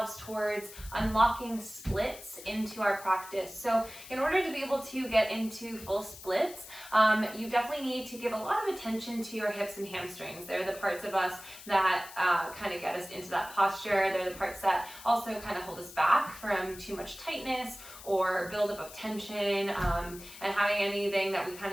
towards unlocking splits into our practice. So in order to be able to get into full splits, you definitely need to give a lot of attention to your hips and hamstrings. They're the parts of us that kind of get us into that posture. They're the parts that also kind of hold us back from too much tightness or buildup of tension, and having anything that we kind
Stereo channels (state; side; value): noise; left; hiss, 16 dB below the sound